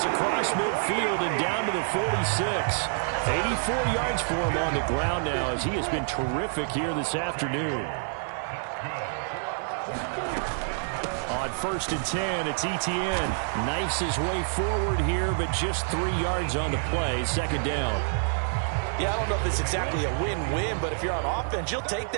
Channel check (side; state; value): left; silent; digital silence